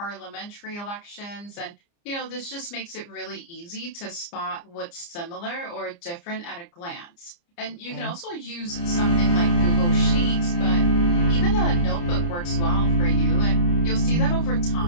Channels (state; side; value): late; right; 29 ms